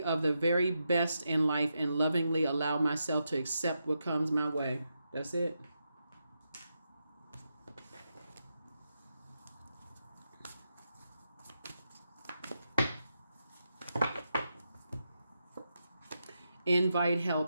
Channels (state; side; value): inverted; both; correlation -0.85